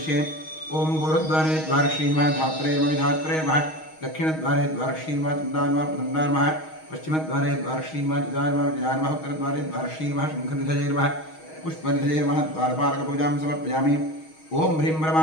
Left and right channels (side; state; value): right; late; 6.3 ms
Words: ॐ गुरुद्वारे द्वारश्रीमः धात्रेर्मविधात्रेर्मः दक्षिणद्वारे द्वारश्रीमः चन्दान्मः प्रदन्दान्मः पश्चिमद्वारे द्वारश्रीमः जजान्मः जजान्मः उत्तरद्वारे द्वारश्रीमः शङ्खनिधजैर्मः पुष्पनिधजैर्मः द्वारपालकपूजां समर्पयामि ॐ ह्रीं